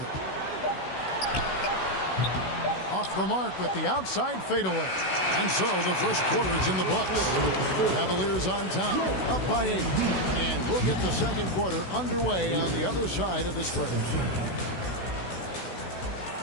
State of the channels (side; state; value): right; late; 16 ms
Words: Off the mark with the outside fadeaway. And so the first quarter is in the books. Cavaliers on top, up by 8. And we'll get the second quarter underway on the other side of this break.